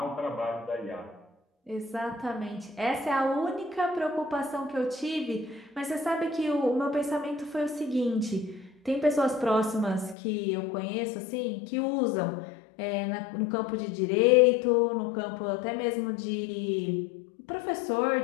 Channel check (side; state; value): right; drops out; at 10.2 s